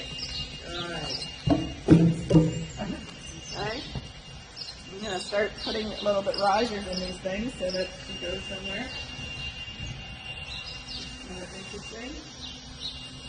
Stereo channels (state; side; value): identical; both; correlation 1.00